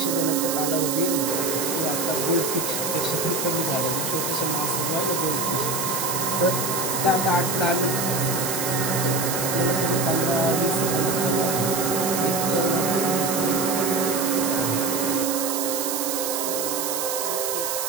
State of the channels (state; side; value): noise; right; hiss, 2 dB below the sound